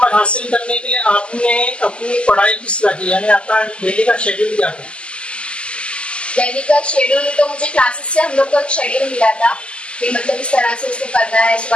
हासिल करने के लिए आपने अपनी पढ़ाई किस तरह की, यानी आपका डेली का शेड्यूल क्या था? डेली का शेड्यूल तो मुझे क्लासेस से हम लोग को एक शेड्यूल मिला था कि मतलब इस तरह से उसको करना है,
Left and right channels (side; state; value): right; late; 0.053 ms